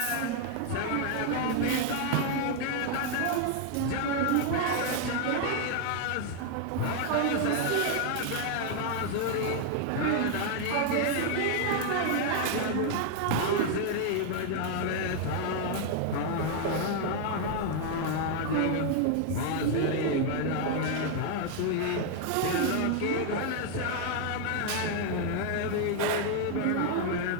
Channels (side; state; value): both; different; correlation 0.00